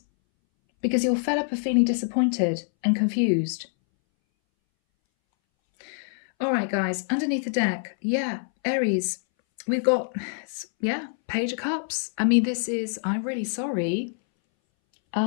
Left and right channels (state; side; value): silent; right; 61 dB below the other